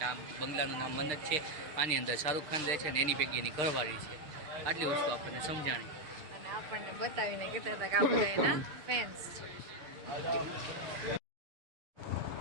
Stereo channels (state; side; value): late; left; 6.6 ms